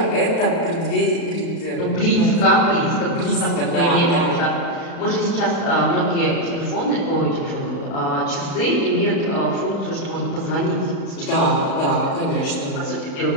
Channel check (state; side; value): late; right; 36 ms